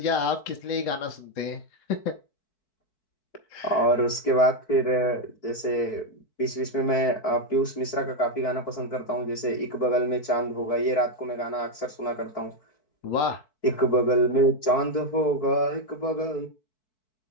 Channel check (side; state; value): right; late; 4.6 ms